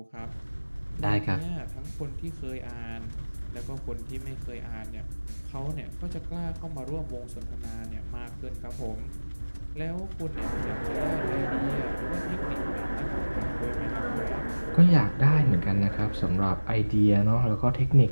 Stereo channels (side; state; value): both; inverted; correlation -1.00